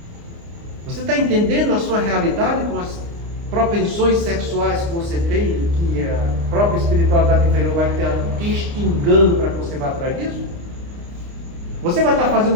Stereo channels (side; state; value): left; late; 29 ms